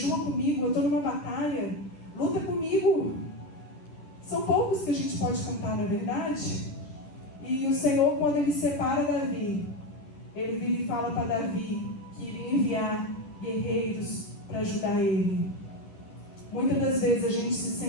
comigo, eu estou numa batalha, luta comigo? São poucos que a gente pode contar, na verdade. E o Senhor, quando ele separa Davi, ele vira e fala para Davi, que iria enviar guerreiros para ajudar ele. Muitas das vezes a gente se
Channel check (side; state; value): right; late; 10 ms